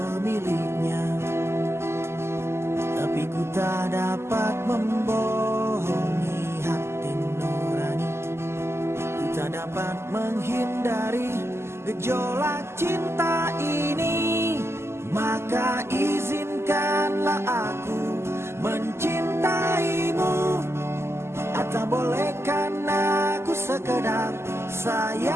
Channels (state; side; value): late; left; 0.12 ms